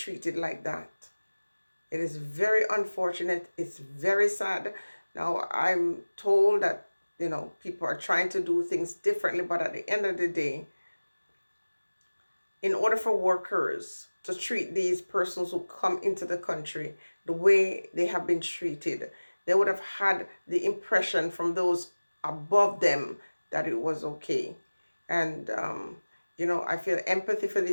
like that. It is very unfortunate. It's very sad. Now, I'm told that, you know, people are trying to do things differently, but at the end of the day, in order for workers to treat these persons who come into the country the way they have been treated, they would have had the impression from those above them that it was okay. And, I feel empathy for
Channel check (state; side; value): inverted; both; correlation -1.00